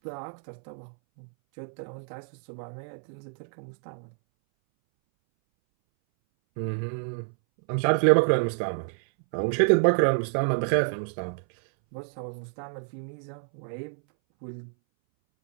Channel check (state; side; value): silent; left; 59 dB below the other